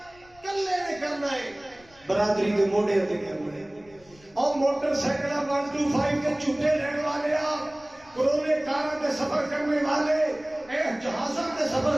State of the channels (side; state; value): left; noise; rumble, 27 dB below the sound